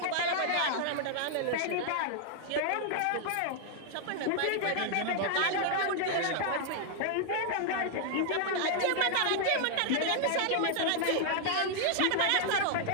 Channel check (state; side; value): different; both; correlation -0.01